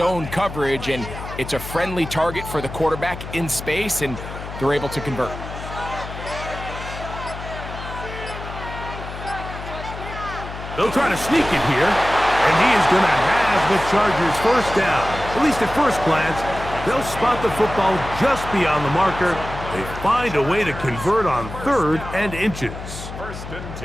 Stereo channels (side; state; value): left; noise; hum, 10 dB below the sound